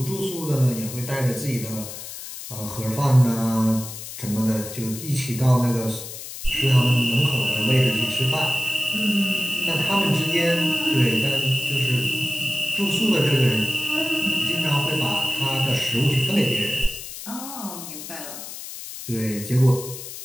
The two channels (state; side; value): noise; left; hiss, 11 dB below the sound